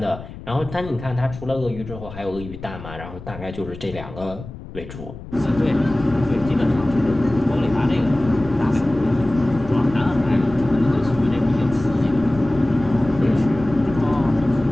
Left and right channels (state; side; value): noise; left; rumble, 13 dB below the sound